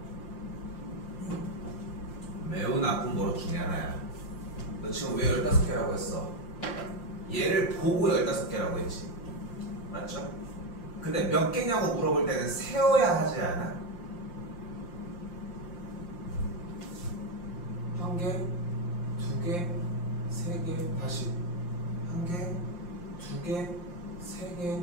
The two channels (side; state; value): right; late; 5.7 ms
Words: 매우 나쁜 버릇 중에 하나야. 너 지금 왜 15개라고 했어? 얘를 보고 15개라고 했지. 맞죠? 근데 몇 개냐고 물어볼 때는 세어야 하지 않아? 한 개, 두 개, 세 개, 다시 한 개, 두 개, 세 개,